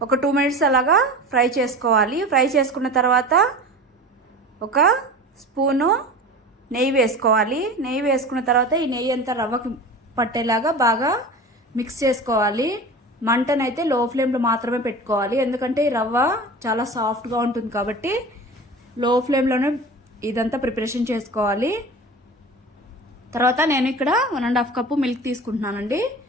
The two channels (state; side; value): normal; both; correlation 0.34